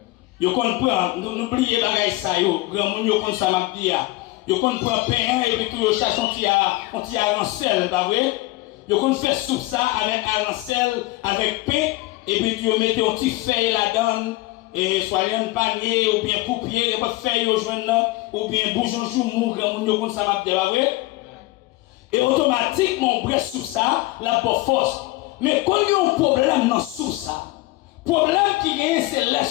Yo kon prend n'oubliez bagay ça yo, grand moun yo kon ça m'a dit ya. Yo kon prend pain et puis tout yo cherche on ti arancel, pas vrai? Yo kon fait soupe ça avec arancel, avec pain et puis tu yo mettez un petit feuille là-dedans et soit un panier ou bien coupier et pas feuille yo joindre là ou bien boujon joumou grand moun yo kon ça m'a dit, pas vrai? Et automatiquement, on bresse sous ça, la bonne force. Mais quand il y a un problème dans sous ça, problème qui vient, c'est la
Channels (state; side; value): quieter; right; 19.9 dB